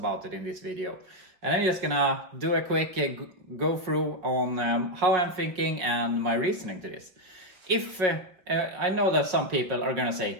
it in this video. And I'm just gonna do a quick go through on how I'm thinking and my reasoning to this. If I know that some people are gonna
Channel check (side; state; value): left; late; 5.4 ms